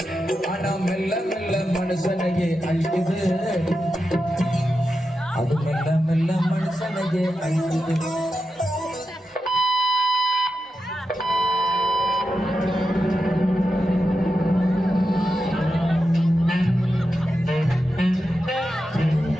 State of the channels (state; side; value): normal; both; correlation 0.89